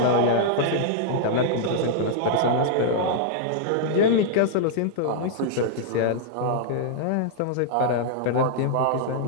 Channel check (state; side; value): different; both; correlation -0.02